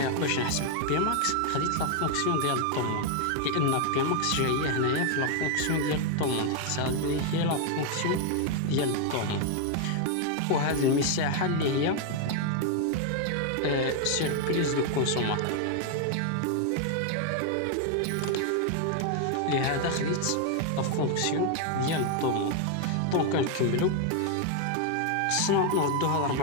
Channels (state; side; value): different; both; correlation 0.00